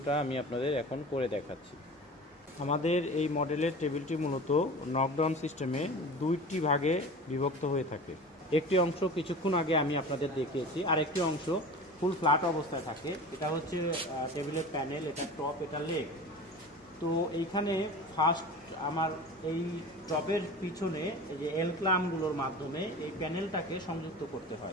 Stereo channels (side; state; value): both; normal; correlation 0.35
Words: আমি আপনাদের এখন করে দেখাচ্ছি। আমাদের এই মডেলের টেবিলটি মূলত নকডাউন সিস্টেমে দুইটি ভাগে বিভক্ত হয়ে থাকে। একটি অংশ কিছুক্ষণ আগে আমি আপনাদের দেখিয়েছি, আর একটি অংশ ফুল ফ্ল্যাট অবস্থায় থাকে। এটা হচ্ছে টেবিলের প্যানেল, এটা টপ, এটা লেগ। তো এইখানে ফার্স্ট আমার এই টপের পিছনে এই যে এল ক্লামগুলোর মাধ্যমে এই প্যানেলটাকে সংযুক্ত করতে